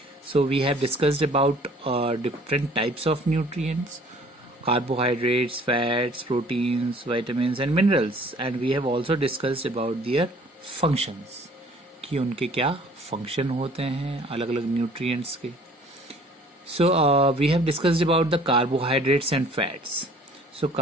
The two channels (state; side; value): normal; both; correlation 0.53